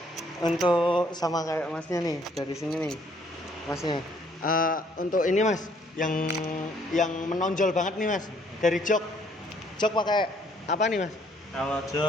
Untuk sama kayak masnya nih, dari sini nih masnya. Untuk ini mas, yang menonjol banget nih mas, dari jok pakai apa nih mas? Kalau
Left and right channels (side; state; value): both; normal; correlation 0.64